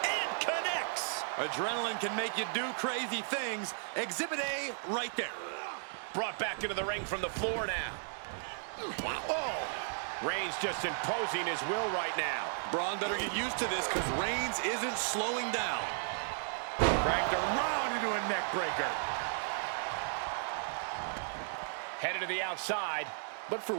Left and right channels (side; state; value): left; silent; digital silence